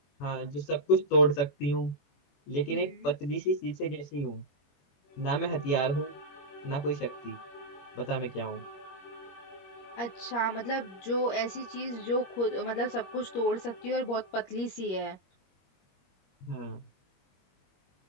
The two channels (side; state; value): right; late; 21 ms